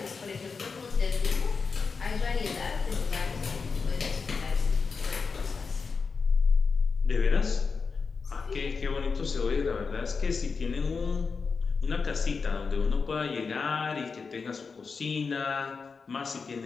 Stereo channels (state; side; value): quieter; right; 5.0 dB